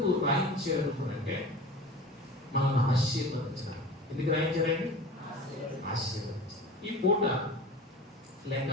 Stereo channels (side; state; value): both; normal; correlation 0.37